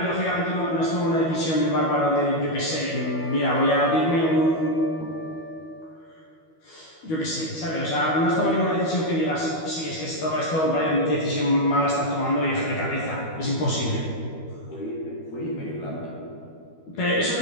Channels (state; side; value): late; right; 12 ms